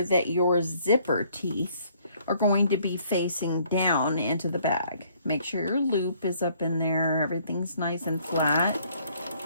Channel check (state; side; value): inverted; both; correlation -0.63